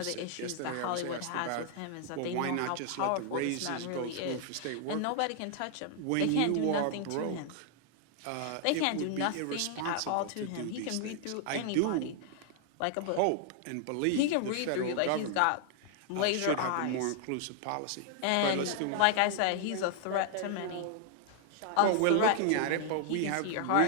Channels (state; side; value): different; both; correlation 0.00